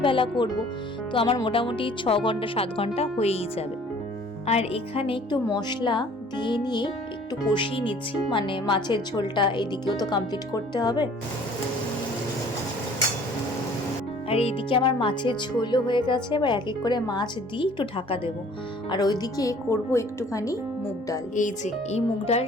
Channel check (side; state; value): both; normal; correlation 0.53